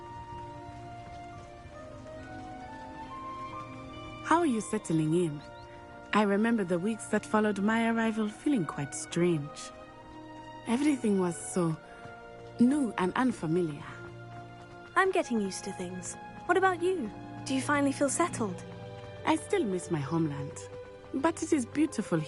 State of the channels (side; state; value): both; identical; correlation 1.00